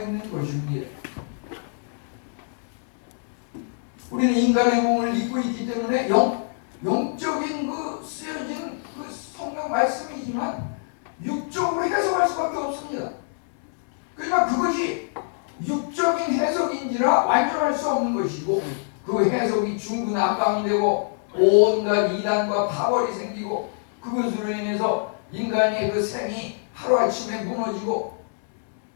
있는 것입니다. 우리는 인간의 몸을 입고 있기 때문에 영적인 그 쓰여진 그 성경 말씀이지만 육적으로 해석할 수밖에 없습니다. 그러나 그것이 육적인 해석인지라 완전할 수 없는 것이고 그 해석이 중구난방이 되고 온갖 이단과 파벌이 생기고 그것으로 인해서 인간의 그 생이 하루아침에 무너지고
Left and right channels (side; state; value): right; silent; digital silence